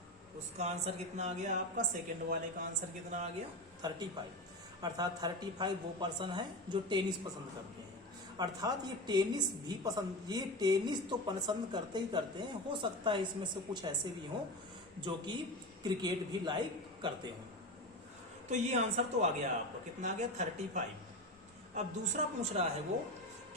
उसका आंसर कितना आ गया आपका, सेकंड वाले का आंसर कितना आ गया 35। अर्थात 35 वो पर्सन है जो टेनिस पसंद करते हैं। अर्थात ये टेनिस तो पसंद करते ही करते हैं, हो सकता है इसमें से कुछ ऐसे भी हों जो कि क्रिकेट भी लाइक करते हों। तो ये आंसर तो आ गया आपको, कितना आ गया 35। अब दूसरा पूछ रहा है वो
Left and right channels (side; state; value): both; normal; correlation 0.23